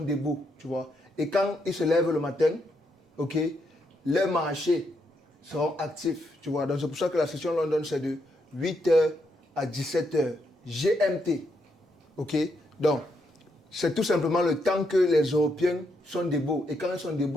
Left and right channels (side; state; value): both; normal; correlation 0.79